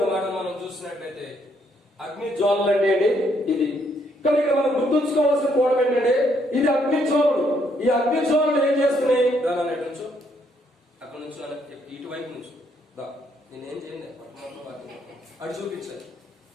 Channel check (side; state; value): both; normal; correlation 0.71